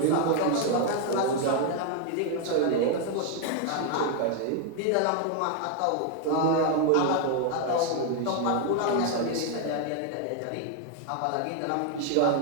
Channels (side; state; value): both; different; correlation 0.00